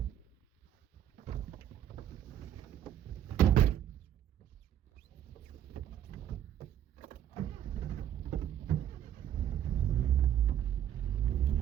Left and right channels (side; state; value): left; quieter; 10.5 dB